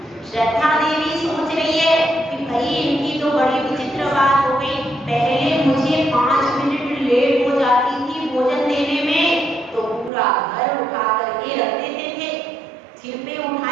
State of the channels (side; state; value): left; drops out; at 10.1 s